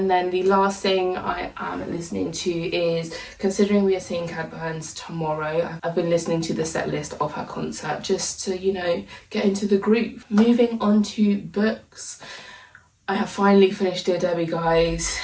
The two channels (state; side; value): identical; both; correlation 1.00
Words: then the last thing I am listening to is, considering we are seeing Cat Burns tomorrow, I've been listening to the set list of her concert just to, you know, get into the groove. Moving on to books. I have finally finished Dear Debbie, guys.